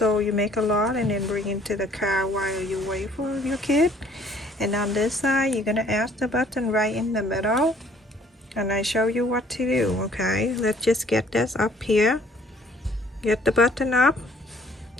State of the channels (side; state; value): both; normal; correlation 0.59